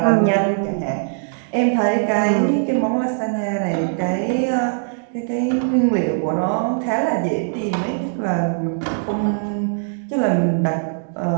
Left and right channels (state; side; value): silent; left; digital silence